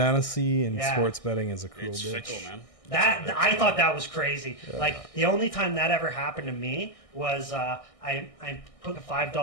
and Yeah. sports betting is a cruel It's bitch. fickle, man. That I thought that was crazy. Like the only time that ever happened to me was I put a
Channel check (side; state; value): right; late; 1.6 ms